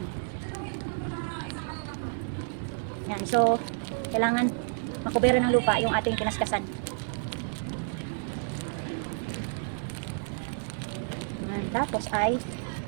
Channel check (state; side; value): silent; left; digital silence